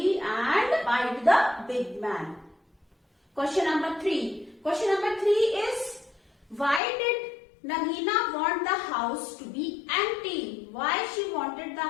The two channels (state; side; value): drops out; right; at 6.8 s